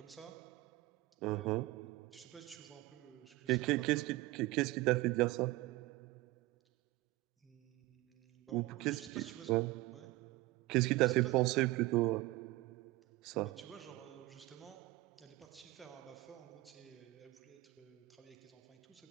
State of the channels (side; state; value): left; quieter; 19.7 dB